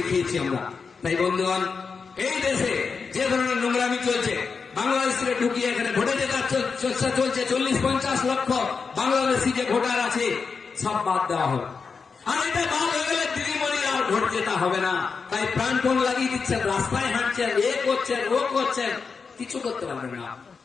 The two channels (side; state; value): right; quieter; 5.2 dB